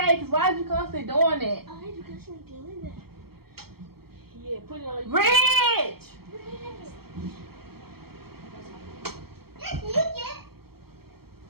because why is you constantly doing that? I hate you constantly doing that. Yeah, put it on you. Ridge! Yes, you get.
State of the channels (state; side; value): late; left; 0.95 ms